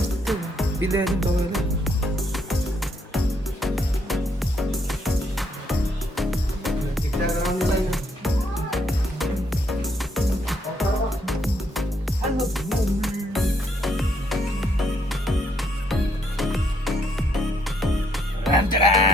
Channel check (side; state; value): both; normal; correlation 0.72